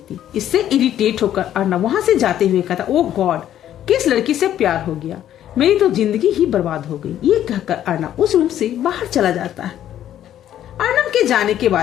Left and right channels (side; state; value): right; quieter; 11.3 dB